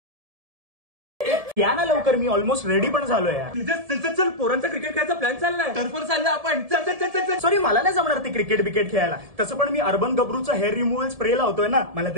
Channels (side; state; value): left; late; 1.7 ms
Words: या ना लवकर. मी ऑलमोस्ट रेडी पण झालोय. चल पोरांचा क्रिकेट खेळायचा प्लॅन चाललाय. टर्फवर चाललं आपण. चल चल चल चल. सॉरी मला नाही जमणार ते क्रिकेट बिकेट खेळायला. तसं पण मी अर्बन गब्रूचं हेअर रिमूव्हल स्प्रे लावतोय ना. मला